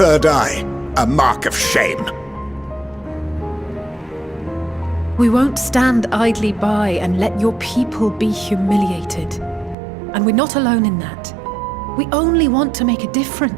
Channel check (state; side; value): drops out; left; at 9.8 s